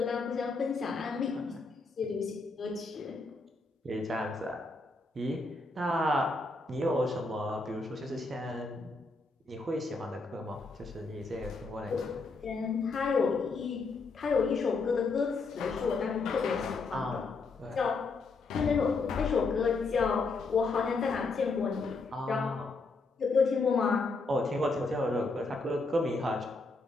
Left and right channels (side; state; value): right; quieter; 3.7 dB